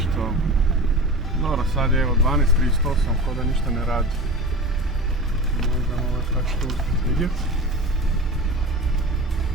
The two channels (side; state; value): both; normal; correlation 0.33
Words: Dobro, sad je evo 12.38, ko da ništa ne radi. Možda ovo tako što uspjeti vidjeti.